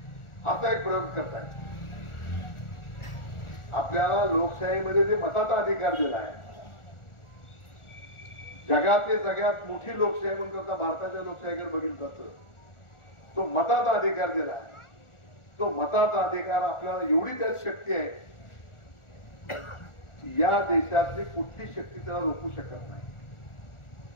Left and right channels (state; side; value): late; right; 1.4 ms